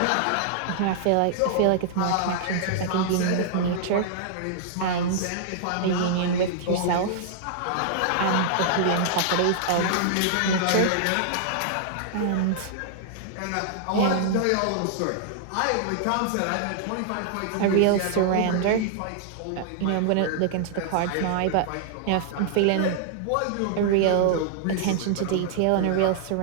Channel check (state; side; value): different; both; correlation -0.01